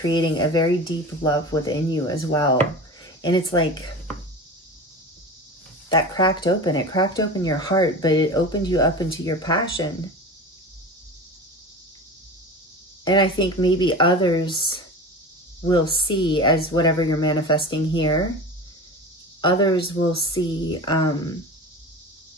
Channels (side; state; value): both; normal; correlation 0.31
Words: a very deep love within you as well. And it's like that cracked open. It cracked open your heart, but it opened you up into your passion. And I think maybe others will see, as whatever you're manifesting here, others will see